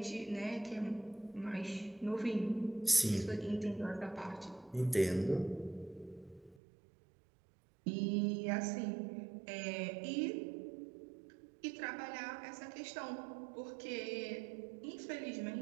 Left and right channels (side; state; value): left; drops out; at 6.6 s